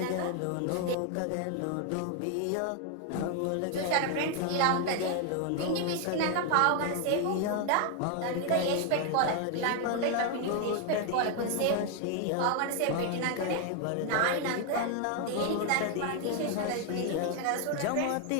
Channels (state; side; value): different; both; correlation 0.01